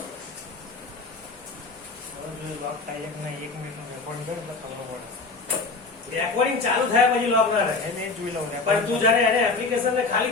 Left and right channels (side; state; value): right; quieter; 4.0 dB